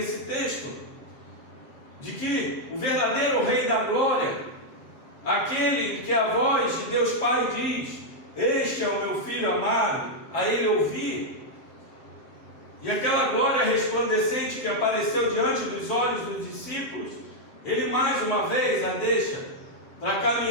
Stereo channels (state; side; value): late; right; 7.6 ms